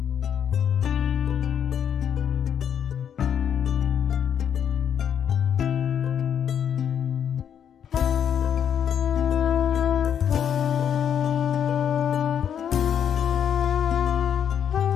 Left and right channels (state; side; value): quieter; right; 8.6 dB